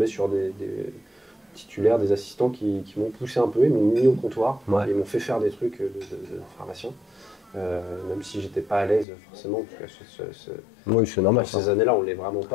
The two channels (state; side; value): drops out; right; at 9.1 s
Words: sur des titulaires, des assistants qui m'ont poussé un peu, ils m'ont mis au comptoir, ils m'ont fait faire des trucs de pharmacien. Même si j'étais pas à l'aise forcément, parce que oui, c'est normal. Ces années-là, on l'est vraiment